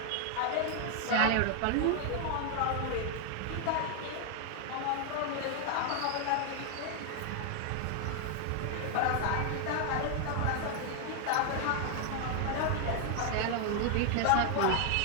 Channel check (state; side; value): different; both; correlation 0.00